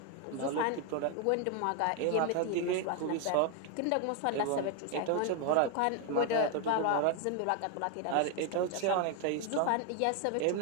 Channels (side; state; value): both; different; correlation 0.01